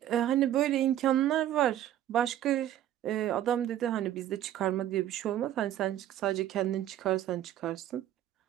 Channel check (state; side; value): quieter; left; 12.1 dB